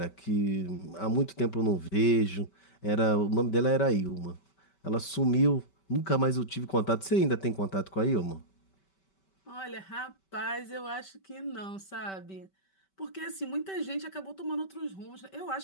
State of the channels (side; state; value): right; late; 5.2 ms